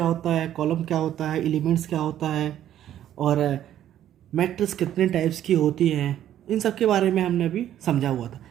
होता है, कॉलम क्या होता है, एलिमेंट्स क्या होता है और मैट्रिक्स कितने टाइप्स की होती हैं। इन सब के बारे में हमने अभी समझा हुआ था।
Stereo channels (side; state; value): left; quieter; 11.4 dB